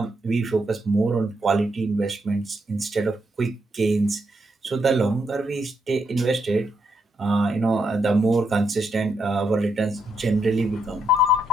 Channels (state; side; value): normal; both; correlation 0.79